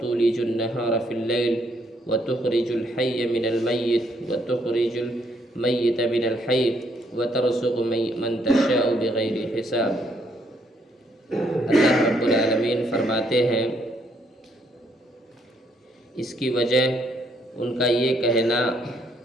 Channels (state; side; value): normal; both; correlation 0.71